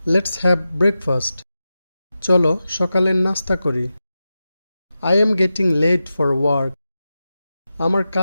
লেটস হ্যাভ ব্রেকফাস্ট, চলো সকালের নাস্তা করি। I am getting late for work, আমার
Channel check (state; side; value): inverted; both; correlation -0.92